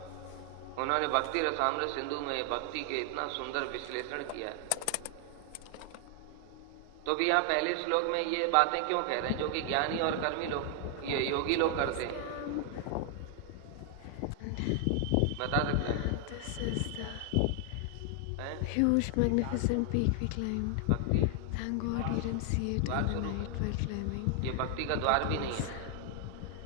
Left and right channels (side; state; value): both; different; correlation 0.00